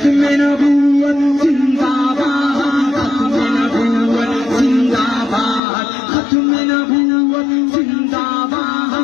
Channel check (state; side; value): drops out; right; at 5.6 s